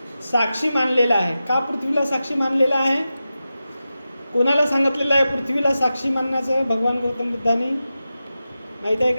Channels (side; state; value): both; inverted; correlation -0.93